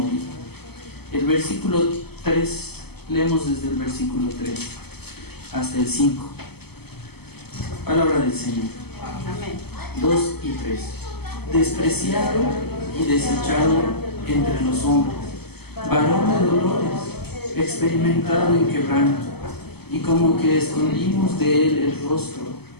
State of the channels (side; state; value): right; late; 0.97 ms